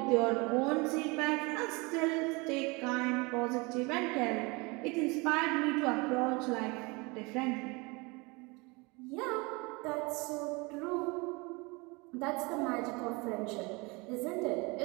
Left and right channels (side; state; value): left; quieter; 26.9 dB